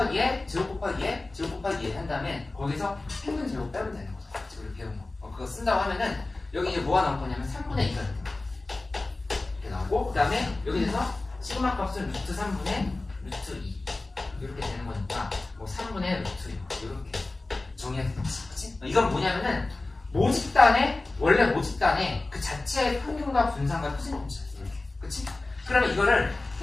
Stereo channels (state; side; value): quieter; right; 3.1 dB